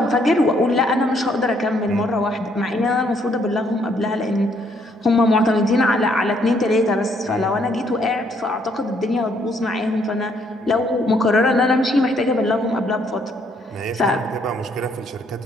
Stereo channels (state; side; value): normal; both; correlation 0.69